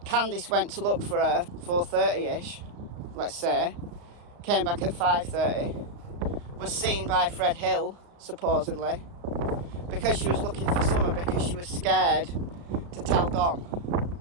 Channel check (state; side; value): late; left; 35 ms